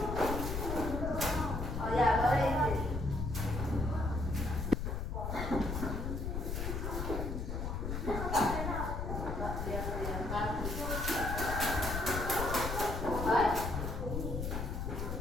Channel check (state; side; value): noise; left; rumble, 3 dB below the sound